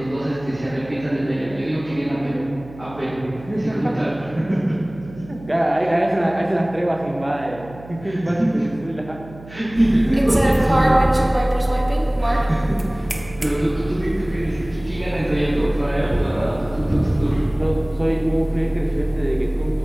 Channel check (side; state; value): right; noise; hum, 18 dB below the sound